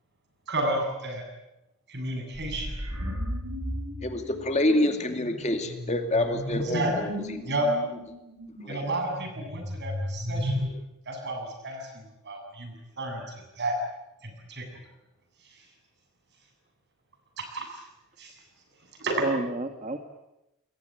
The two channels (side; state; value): both; normal; correlation 0.34